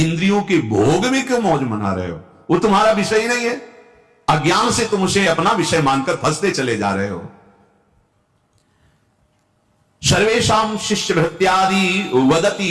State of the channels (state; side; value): identical; both; correlation 1.00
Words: के भोग में क्यों मौज मना रहे हो? वो तुम्हारा विषय ही नहीं है। अज्ञान से तुम उसे अपना विषय मानकर फंसते चले जा रहे हो। सर्वेषां शिष्य भृत्यादि